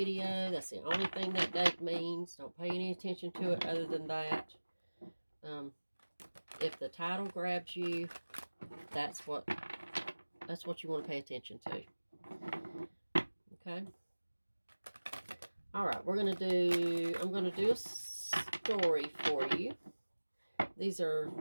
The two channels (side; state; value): both; inverted; correlation -1.00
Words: That's the only thing that date means. Don't pay any attention to it other than that. If the title grabs you, that's what you want to pay attention to. Okay. All right, I'm going to do a story for you. These are